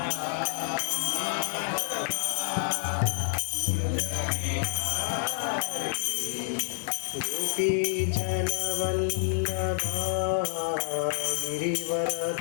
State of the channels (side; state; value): right; silent; 58 dB below the other